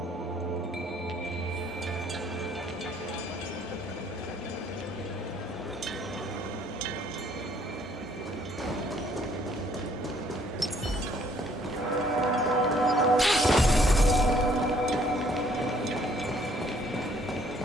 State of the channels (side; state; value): both; normal; correlation 0.63